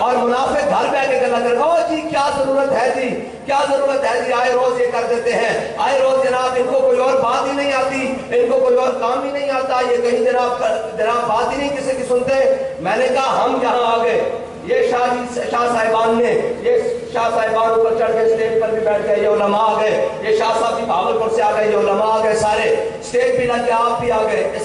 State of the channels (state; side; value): identical; both; correlation 1.00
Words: منافق گھر پہ کے گلا کر گا جی کیا ضرورت ہے جی، کیا ضرورت ہے جی، آئے روز یہ کر دیتے ہیں، آئے روز جناب ان کو کوئی اور بات ہی نہیں آتی، ان کو کوئی اور کام ہی نہیں آتا، یہ کہیں جناب بات ہی نہیں کسی کی سنتے۔ میں نے کہا ہم یہاں آ گئے، یہ شاہ صاحبان نے، یہ شاہ صاحبان اوپر چڑھ کے سٹیج پر بھی بیٹھ گئے، یہ علماء آ گئے، یہ شاہ صاحب بھی بھاگلپور سے آ گئے، یہ علماء آ گئے، سارے سٹیج پہ لگ کے آپ بھی آ گئے۔